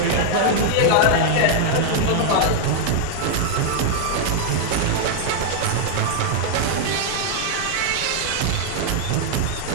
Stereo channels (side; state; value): both; different; correlation 0.00